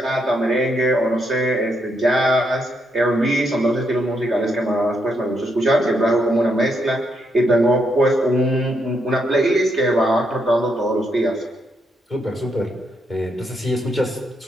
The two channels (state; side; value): normal; both; correlation 0.78